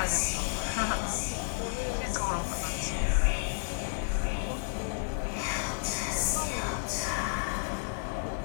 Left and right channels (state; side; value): silent; right; digital silence